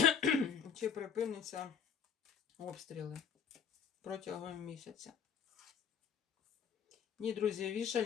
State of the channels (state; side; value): quieter; right; 7.3 dB